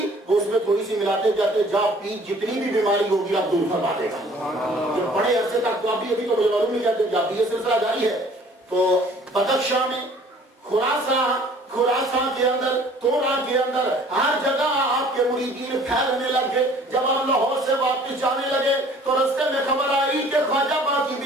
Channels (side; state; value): both; normal; correlation 0.53